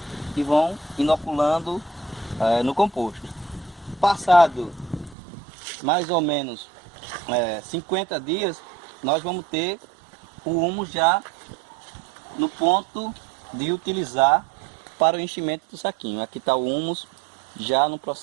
e vão inoculando no composto. Passado mais ou menos 50 dias, nós vamos ter o humus já no ponto de utilizar para o enchimento do saquinho. Aqui está o humus já no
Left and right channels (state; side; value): drops out; left; at 5.2 s